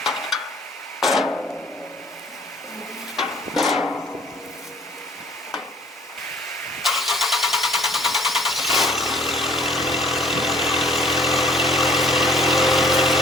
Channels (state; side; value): normal; both; correlation 0.56